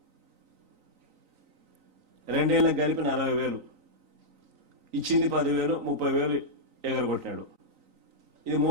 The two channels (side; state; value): left; late; 3.9 ms